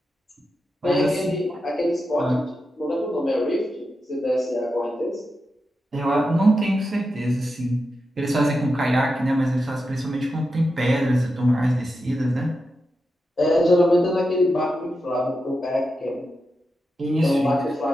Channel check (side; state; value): both; normal; correlation 0.88